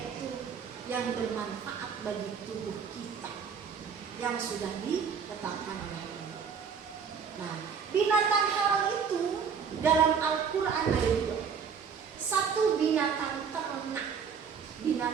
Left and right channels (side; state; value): left; quieter; 6.5 dB